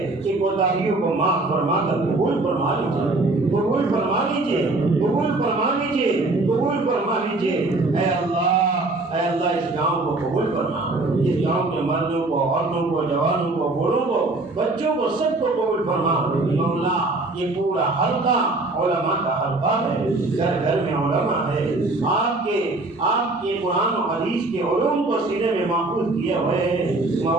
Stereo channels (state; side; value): quieter; left; 3.0 dB